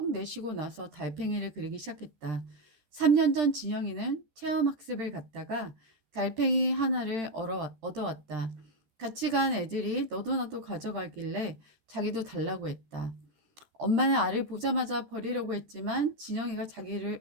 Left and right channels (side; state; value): left; late; 13 ms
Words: 내쉬고 나서 달팽이를 그리기 시작했다. 3년 전 진영이는 체험학습을 갔다가 달팽이 하나를 얻어왔다. 같이 간 애들이 너도 나도 가져가길래 자기도 달라고 했다. 엄마는 알을 보자마자 버리려고 했지만 진영이가